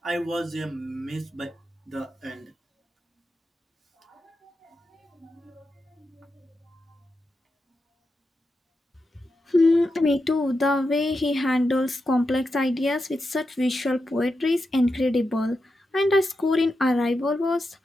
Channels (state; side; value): normal; both; correlation 0.88